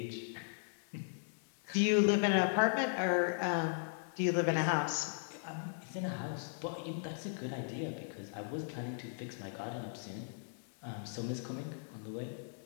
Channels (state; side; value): silent; right; 53 dB below the other